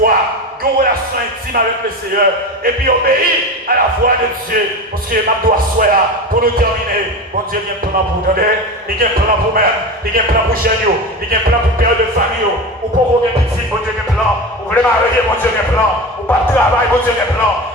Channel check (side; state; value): both; normal; correlation 0.26